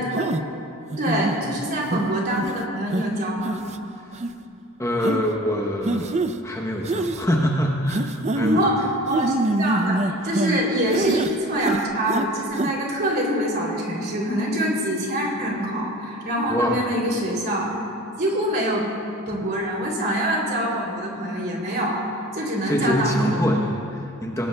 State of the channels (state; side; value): normal; both; correlation 0.43